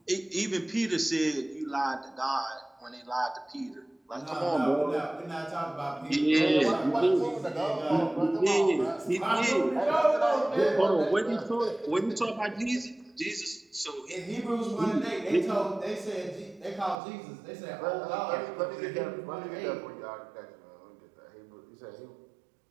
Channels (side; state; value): left; drops out; at 16.9 s